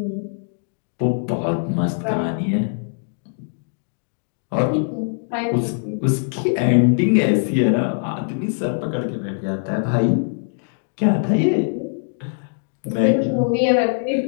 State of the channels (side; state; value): right; silent; digital silence